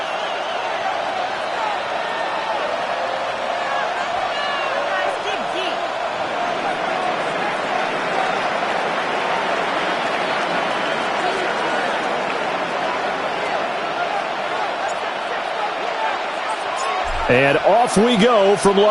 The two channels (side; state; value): both; identical; correlation 1.00